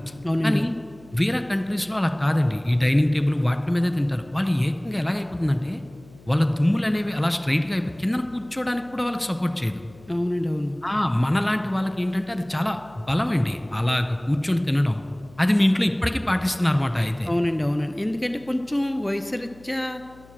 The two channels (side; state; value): left; noise; hum, 24 dB below the sound